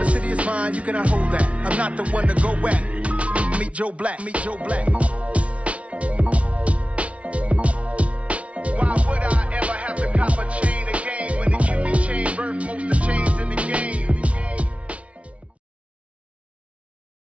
the city is mine, you cannot hold that. I'm not the one to go back. Meet Joe Black, meet Joe Black. Why would I ever have to cop a chain again when the QB chain birth most of chains in the game?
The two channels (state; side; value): late; left; 0.063 ms